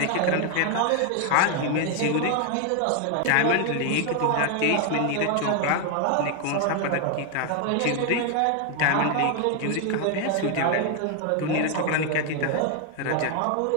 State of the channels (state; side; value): different; both; correlation 0.01